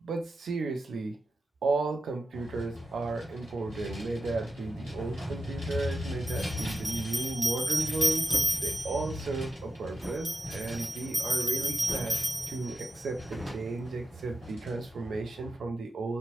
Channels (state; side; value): normal; both; correlation 0.90